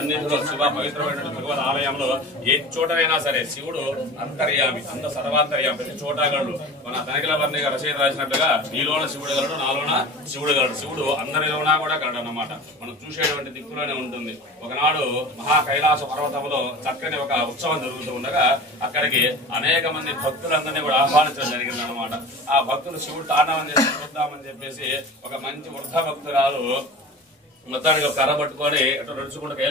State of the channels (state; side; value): normal; both; correlation 0.36